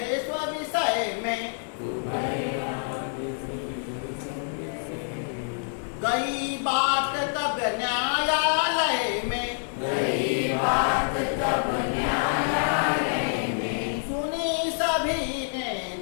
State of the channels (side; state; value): right; silent; 60 dB below the other